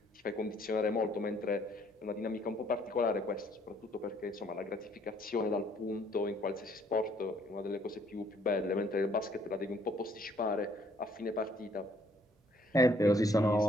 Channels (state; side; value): normal; both; correlation 0.64